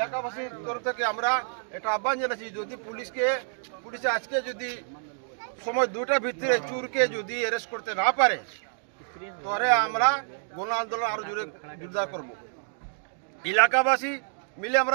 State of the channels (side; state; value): left; silent; digital silence